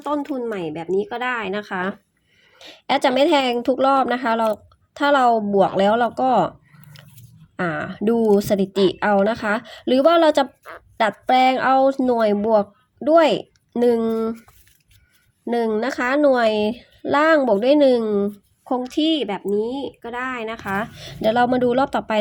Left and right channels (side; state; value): both; identical; correlation 1.00